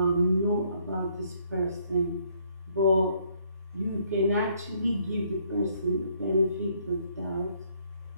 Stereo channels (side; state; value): both; inverted; correlation -0.67